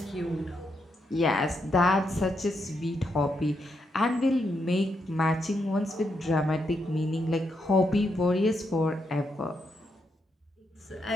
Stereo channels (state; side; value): normal; both; correlation 0.80